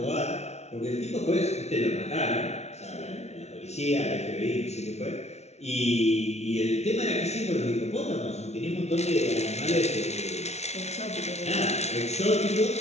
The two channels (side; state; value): right; late; 0.31 ms